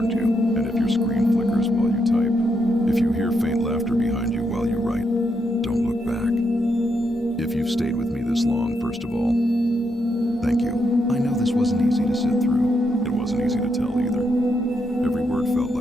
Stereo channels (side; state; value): both; normal; correlation 0.80